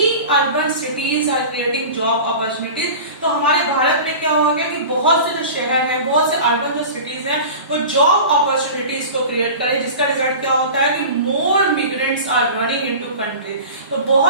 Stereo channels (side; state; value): both; inverted; correlation -0.35